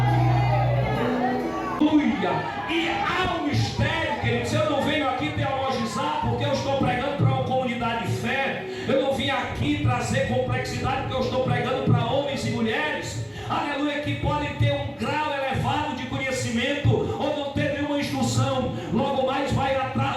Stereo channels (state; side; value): identical; both; correlation 1.00